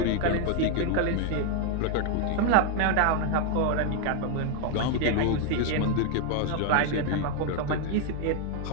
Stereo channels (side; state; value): both; different; correlation 0.01